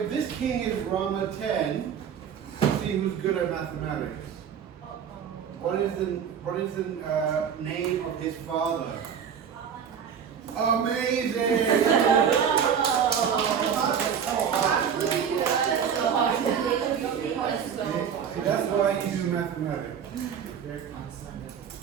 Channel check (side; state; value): left; quieter; 7.7 dB